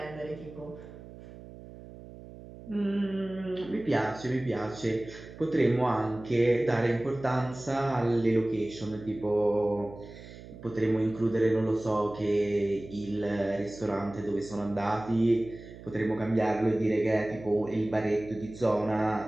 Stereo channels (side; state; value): right; noise; hum, 16 dB below the sound